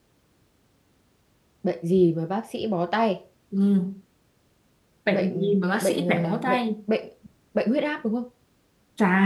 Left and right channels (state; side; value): identical; both; correlation 1.00